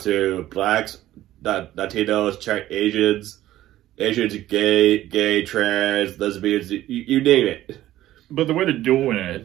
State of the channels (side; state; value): left; quieter; 14.2 dB